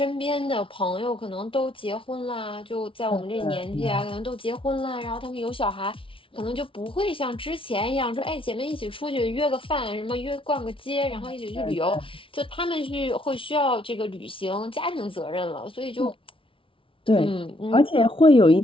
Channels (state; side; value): late; right; 0.25 ms